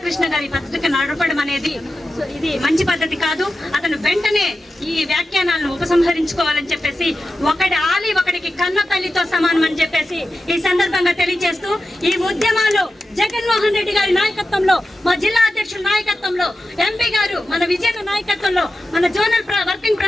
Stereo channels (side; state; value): both; normal; correlation 0.92